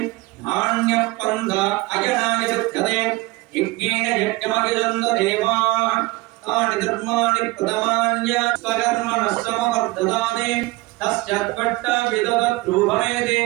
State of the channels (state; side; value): quieter; left; 21.6 dB